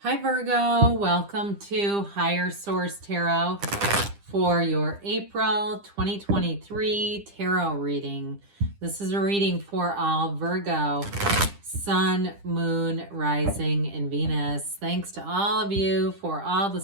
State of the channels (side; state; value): left; late; 10 ms